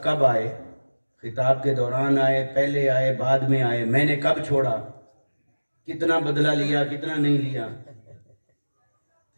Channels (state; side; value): inverted; both; correlation -1.00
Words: کب آئے؟ خطاب کے دوران آئے، پہلے آئے، بعد میں آئے، میں نے کب چھوڑا، کتنا بدلہ لیا، کتنا نہیں لیا؟